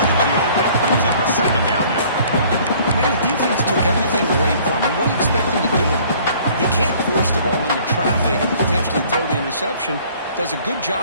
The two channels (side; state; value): both; inverted; correlation -0.55